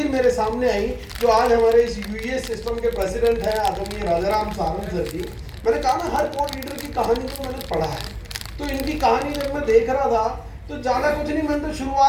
मेरे सामने आई जो आज हमारे इस यूएस सिस्टम के प्रेसिडेंट हैं आदरणीय राजाराम सारंग सर जी। मैंने कहा ना हर कोर्ट लीडर की कहानी को मैंने पढ़ा है, तो इनकी कहानी जब मैं देख रहा था तो ज़्यादा कुछ नहीं, मैंने तो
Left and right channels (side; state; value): both; identical; correlation 1.00